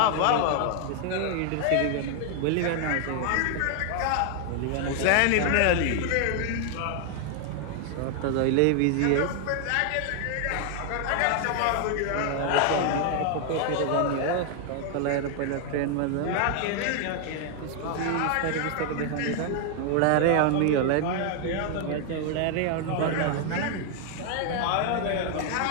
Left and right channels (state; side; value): different; both; correlation 0.00